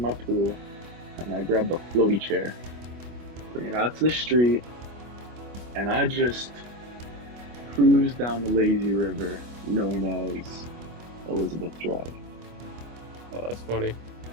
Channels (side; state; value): left; late; 25 ms